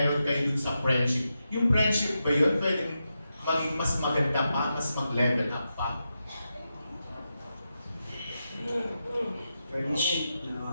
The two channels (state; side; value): inverted; both; correlation -0.88